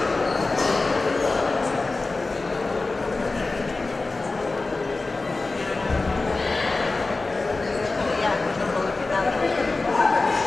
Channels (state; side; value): quieter; right; 3.5 dB